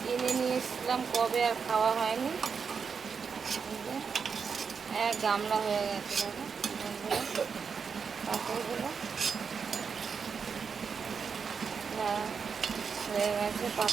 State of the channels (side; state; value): left; quieter; 5.9 dB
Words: কিনে নিয়ে এসেছিলাম, কবে আর খাওয়া হয়নি। এক গামলা হয়ে গেছে দেখো বন্ধুরা পাঁপড়গুলো হয়ে গেছে।